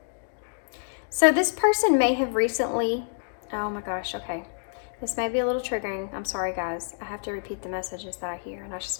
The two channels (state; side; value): silent; right; digital silence